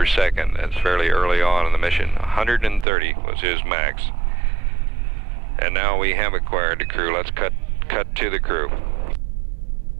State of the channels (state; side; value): drops out; left; at 2.9 s